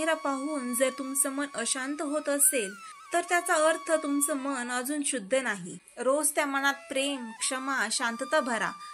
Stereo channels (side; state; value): both; identical; correlation 1.00